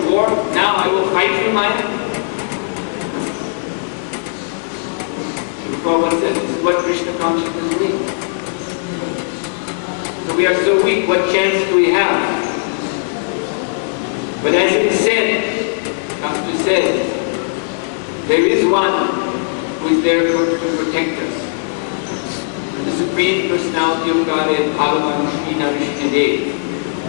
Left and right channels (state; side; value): silent; right; digital silence